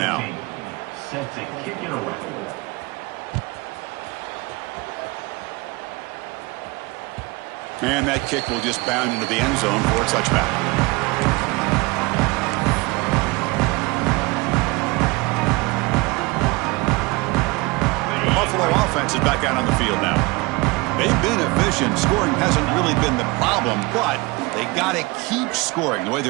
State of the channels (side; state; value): left; quieter; 24.8 dB